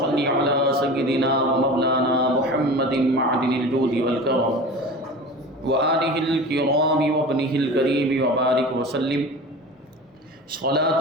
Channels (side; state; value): both; normal; correlation 0.35